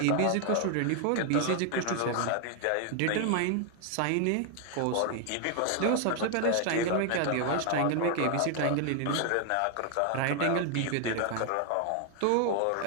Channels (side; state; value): both; different; correlation 0.00